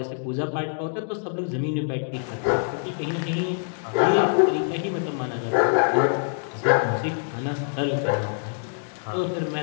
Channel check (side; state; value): right; silent; digital silence